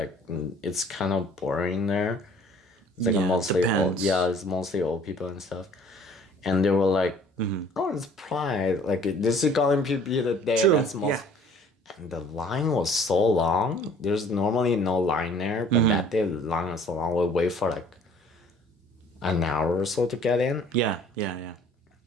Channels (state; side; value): normal; both; correlation 0.53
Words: it's kind of boring there. It's like Yeah, mostly depends. it's mostly old people and stuff, and they were like, oh, it's Pride, like this is gonna be the day True, that's most. yeah. And the line was so long. There's normally no line there, but that day the line was so long. We wait for like an hour or so to get in. Yeah, yeah, yeah.